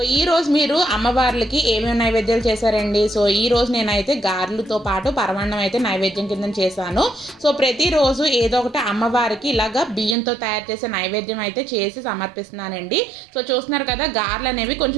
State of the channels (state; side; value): drops out; left; at 10.2 s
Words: ఈరోజు మీరు అమ్మవార్లకి ఏమేమి నైవేద్యాలు చేశారండి? సో ఈరోజు నేనైతే గారెలతో పాటు పరమాన్నం అయితే నైవేద్యం కింద చేశాను. సో ప్రతిరోజు ఏదో ఒకటి అమ్మవారికి ఇలాగా బియ్యంతో తయారు చేసే నైవేద్యం అయితే చేసి సమర్పిస్తున్నానండి. సో చూస్తున్నారు కదా, గారెలు అనేవి